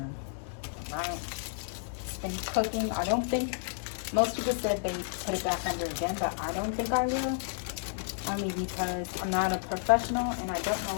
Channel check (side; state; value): right; silent; digital silence